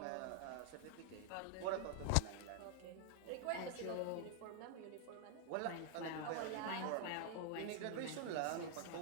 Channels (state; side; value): different; both; correlation 0.00